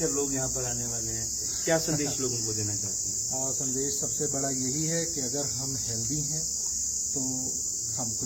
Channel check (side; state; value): both; identical; correlation 1.00